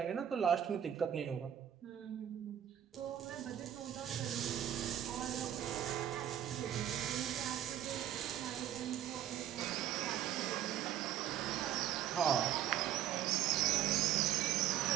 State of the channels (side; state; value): left; quieter; 10.8 dB